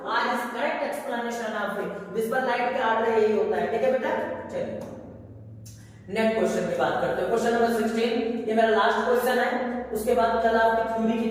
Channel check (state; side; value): identical; both; correlation 1.00